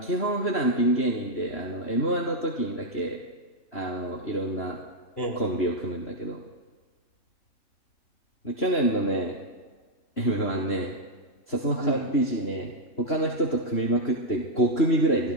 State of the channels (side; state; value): right; late; 3.0 ms